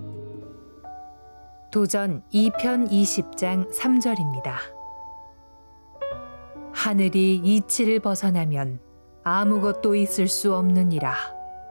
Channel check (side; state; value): both; inverted; correlation -1.00